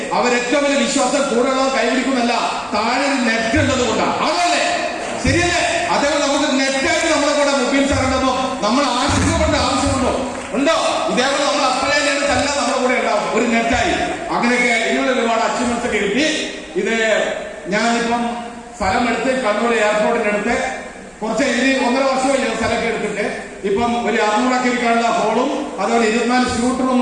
അവരേറ്റവും വലിയ വിശ്വാസം കൂടുതലുള്ളവർ കൈപിടിക്കുന്നല്ല, താഴെ നെറ്റ് ഉള്ളത് കൊണ്ടാണ്. അതല്ലേ ശരിയല്ലേ? അതേപോലെ നമുക്ക് നെറ്റായിട്ട് നമ്മളെ കൂടെ മുബീൻ സാർ ഉണ്ടോ, നമ്മൾ ആശങ്കപ്പെടേണ്ട ആവശ്യമുണ്ടോ? ഉണ്ടോ? ഇതേപോലെ നമ്മൾ അപ്ലൈ എല്ലാം നമ്മുടെ കൂടെ ഉണ്ടാവും, ഒരു നെറ്റായി. അങ്ങനെയൊക്കെ ഇതിനുള്ള ഒരുപാട് അച്ചീവ്മെന്റ്സ് ഒക്കെ കിട്ടി. ഇത് ഞാനിപ്പം സ്ഥലം എടുത്ത് കണ്ണൂർ എയർപോർട്ടിന്റെ അടുത്ത് കുറച്ച് 1.5 വർഷമായി സ്ഥലമൊക്കെ എടുത്തിട്ട് ഇപ്പം ഒരു 600 ഇരിക്കാനുള്ള ഹോളും അതുപോലെ 24 സ്യൂട്ട്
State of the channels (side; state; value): both; identical; correlation 1.00